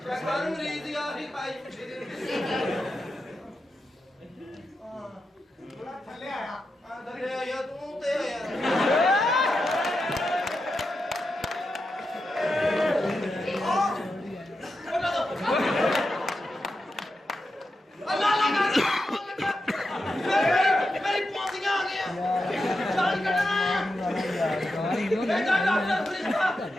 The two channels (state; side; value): normal; both; correlation 0.88